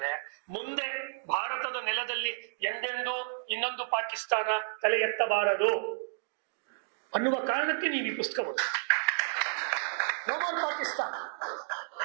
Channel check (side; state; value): left; silent; digital silence